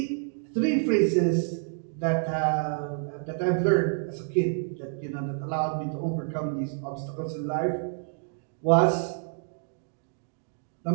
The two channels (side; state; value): left; silent; 59 dB below the other